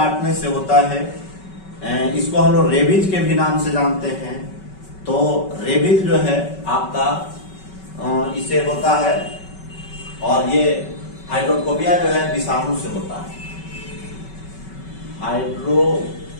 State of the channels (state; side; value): late; right; 5.3 ms